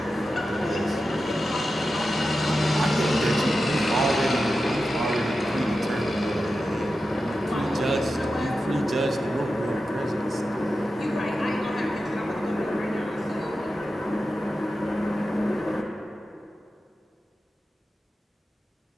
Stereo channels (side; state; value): both; normal; correlation 0.92